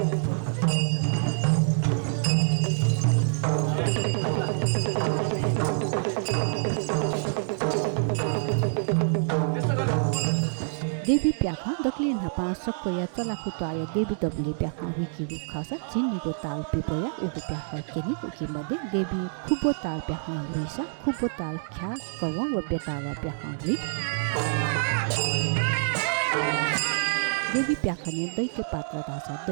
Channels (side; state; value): left; silent; digital silence